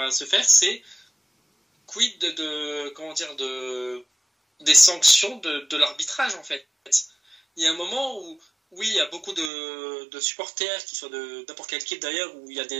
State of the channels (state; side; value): drops out; left; at 9.5 s